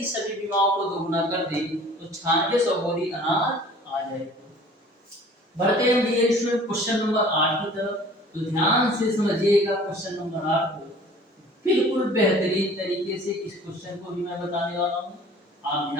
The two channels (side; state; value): both; normal; correlation 0.48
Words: सभी बीमाओं को दोगुना कर दें तो 9600 बोरी अनाज आ जाएगा। बढ़ते हैं डियर स्टूडेंट क्वेश्चन नंबर 8 की तरफ। तो ध्यान से समझिएगा क्वेश्चन नंबर 8 को। बिल्कुल बेहतरीन तरीके से इस क्वेश्चन को भी मैं बताने वाला हूं, आप